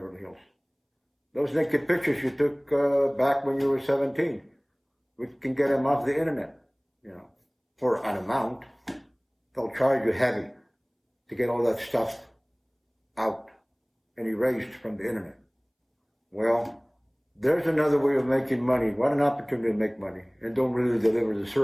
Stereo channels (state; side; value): identical; both; correlation 1.00